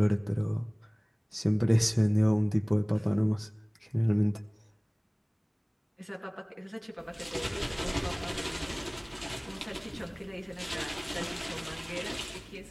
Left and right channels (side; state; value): both; identical; correlation 1.00